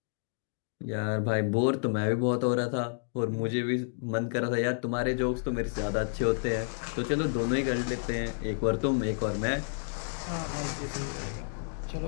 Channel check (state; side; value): silent; right; digital silence